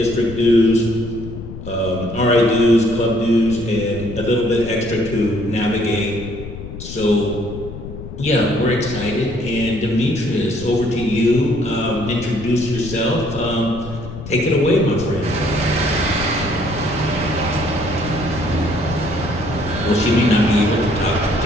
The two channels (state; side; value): noise; left; rumble, 11 dB below the sound